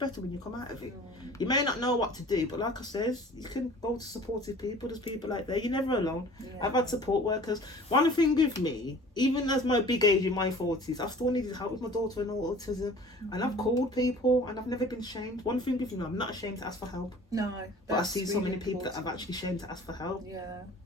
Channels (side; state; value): both; normal; correlation 0.46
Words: when you come out of it. You may not know what to do, but like I says, you can go to supportive people. There's people like that. You're never alone. I've had support workers. One thing with me, even as my big age in my 40s, I still needed help with my daughter and autism. And I've called people and I've never been ashamed. One thing with me, I'm not ashamed to ask for help. No. But I see so many people that I've actually ashamed to ask for help. Yeah.